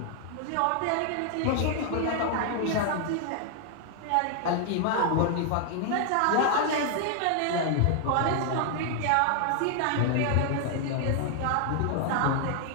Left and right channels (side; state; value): both; different; correlation 0.00